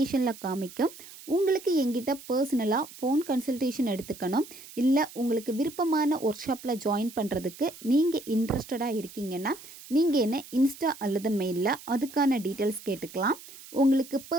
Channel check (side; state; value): right; noise; hiss, 17 dB below the sound